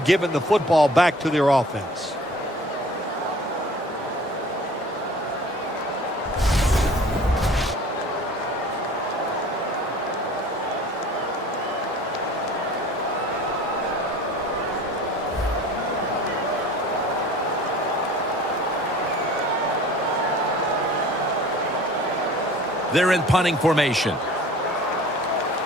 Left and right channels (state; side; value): normal; both; correlation 0.46